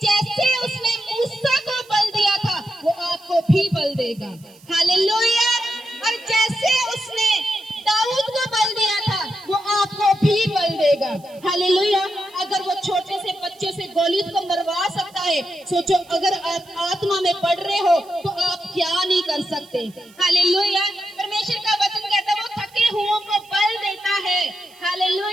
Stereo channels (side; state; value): right; noise; hiss, 27 dB below the sound